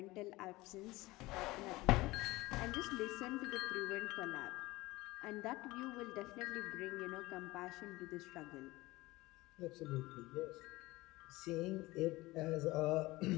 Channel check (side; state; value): right; quieter; 20.1 dB